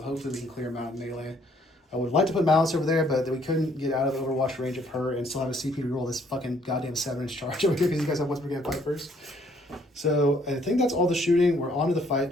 hopefully we can clear them out in melee. I would like to put Malice over there, but we couldn't get out of the Overwatch range of her and still have a CP to roll this fucking goddamn 7-inch charge over here because you guys have what's we're going to fight first. So I think that's all the shooting. We're on to the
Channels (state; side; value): normal; both; correlation 0.65